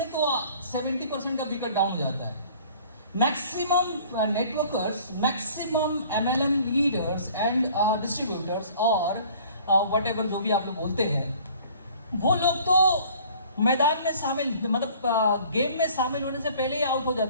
तो 70% का विकेट डाउन हो जाता है। Maximum networkers, maximum MLM leaders and distributors और वट एवर जो भी आप लोग बोलते हैं, वो लोग तो मैदान में शामिल, मतलब गेम में शामिल होने से पहले ही आउट हो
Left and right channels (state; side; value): inverted; both; correlation -0.51